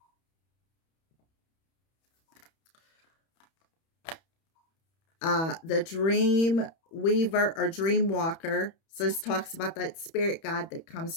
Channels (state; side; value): late; right; 31 ms